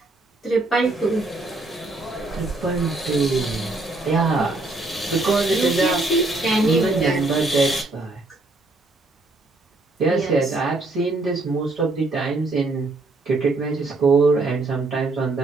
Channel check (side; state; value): left; quieter; 3.1 dB